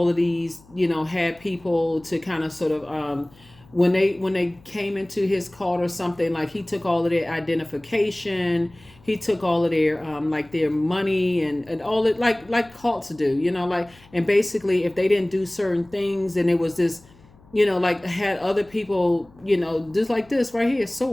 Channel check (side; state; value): left; noise; hum, 27 dB below the sound